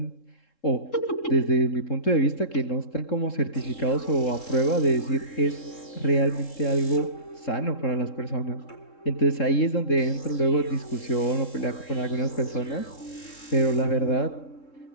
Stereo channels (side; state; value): right; late; 3.7 ms